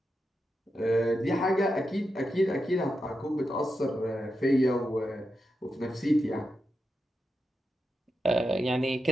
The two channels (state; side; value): normal; both; correlation 0.88